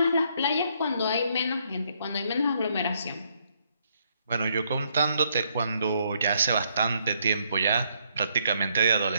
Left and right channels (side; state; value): both; inverted; correlation -0.72